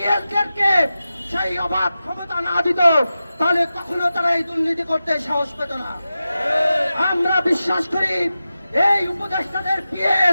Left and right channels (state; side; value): inverted; both; correlation -0.93